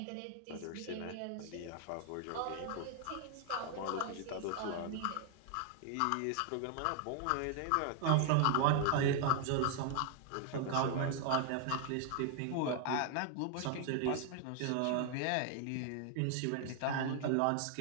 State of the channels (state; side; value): different; both; correlation 0.00